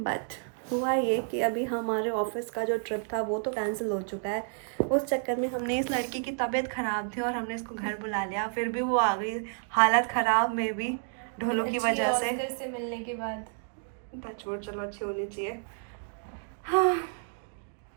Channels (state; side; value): silent; left; 57 dB below the other